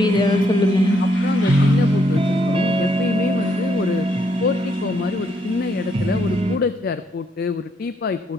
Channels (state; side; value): normal; both; correlation 0.74